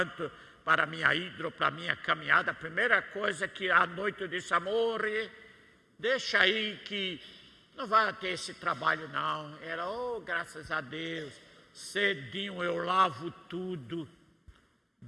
para minha hidro, para minha caminhada. A primeira coisa que à noite eu disse, amor, deixa aí que não vai ter esse trabalho não. Ela, graças a Deus, cedinho eu lavo tudo,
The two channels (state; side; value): identical; both; correlation 1.00